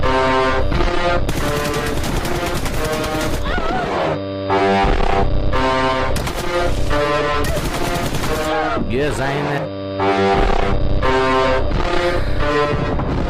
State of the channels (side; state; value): both; identical; correlation 1.00